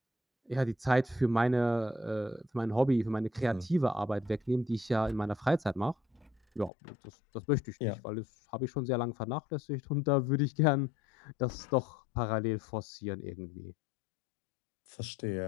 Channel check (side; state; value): right; drops out; at 6.7 s